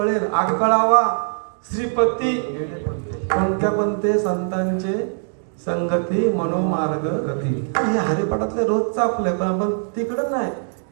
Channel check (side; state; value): left; silent; digital silence